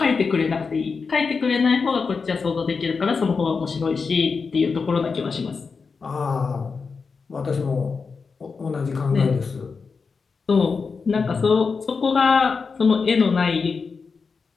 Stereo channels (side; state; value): right; quieter; 5.0 dB